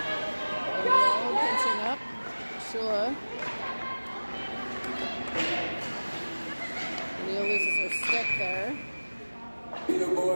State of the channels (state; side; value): inverted; both; correlation -1.00